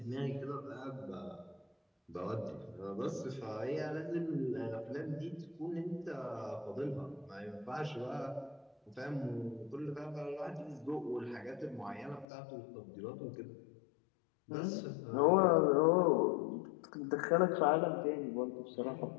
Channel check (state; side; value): drops out; right; at 12.2 s